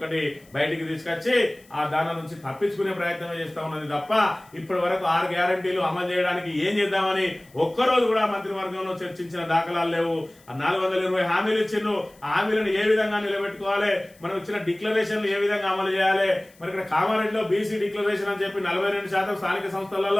బయటికి తీసుకొచ్చి ఆ దాని నుంచి తప్పించుకునే ప్రయత్నం చేస్తా ఉన్నది తప్ప ఇప్పటి వరకు 6 గ్యారంటీలు అమలు చేయడానికి ఏం చేద్దామని ఒక్కరోజు కూడా మంత్రివర్గంలో చర్చించిన దాఖలాలు లేవు. 420 హామీలు ఇచ్చిండ్రు. ఆ హామీలను ఏ విధంగా నిలబెట్టుకోవాలి, మనం ఇచ్చిన డిక్లరేషన్లు ఏ విధంగా అమలు చేయాలి. మరి ఇక్కడ కామారెడ్డిలో బీసీ డిక్లరేషన్ అని చెప్పి 42% స్థానిక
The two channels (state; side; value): noise; left; hiss, 28 dB below the sound